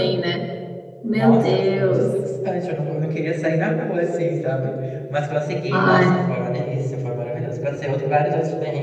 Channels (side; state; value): both; identical; correlation 1.00